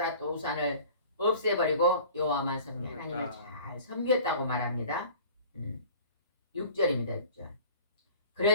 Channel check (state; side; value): inverted; both; correlation -0.45